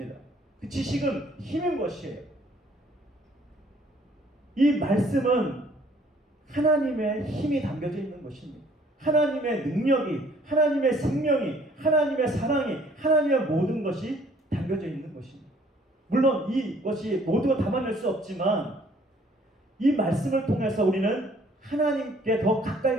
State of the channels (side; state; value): both; normal; correlation 0.59